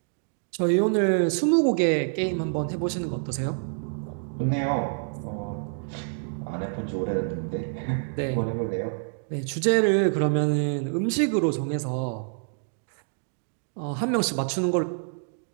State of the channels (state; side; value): silent; left; digital silence